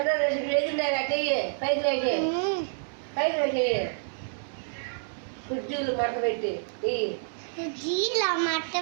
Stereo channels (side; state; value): left; silent; 59 dB below the other